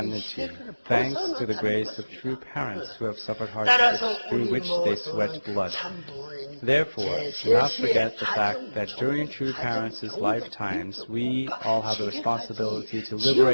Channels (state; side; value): inverted; both; correlation -1.00